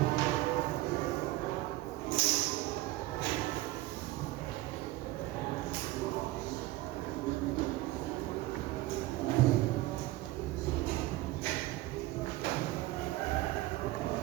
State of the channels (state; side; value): quieter; left; 17.8 dB